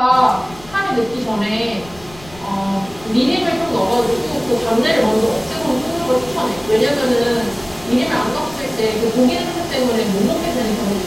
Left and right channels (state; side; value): noise; left; rumble, 21 dB below the sound